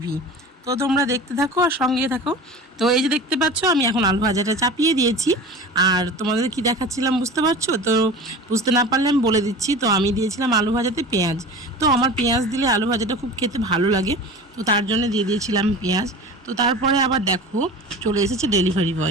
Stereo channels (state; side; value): normal; both; correlation 0.36